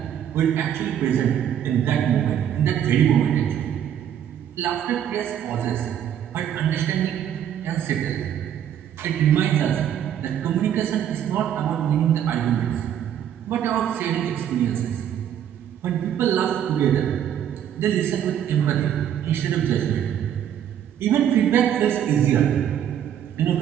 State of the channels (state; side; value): quieter; left; 9.9 dB